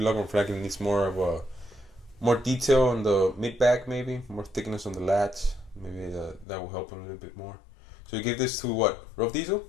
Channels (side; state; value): right; drops out; at 6.5 s